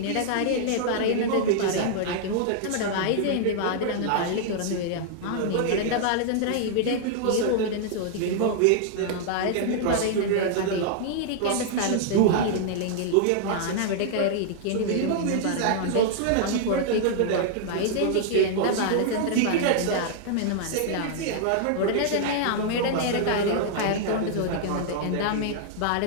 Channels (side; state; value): both; different; correlation -0.01